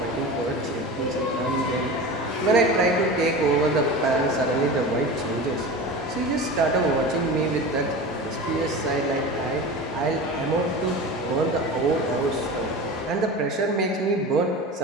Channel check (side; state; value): both; normal; correlation 0.31